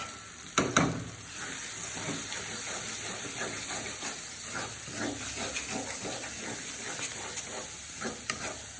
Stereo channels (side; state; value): both; identical; correlation 1.00